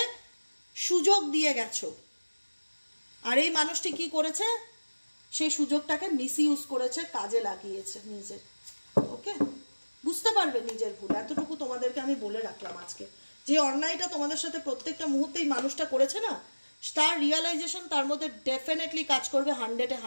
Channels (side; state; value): both; inverted; correlation -1.00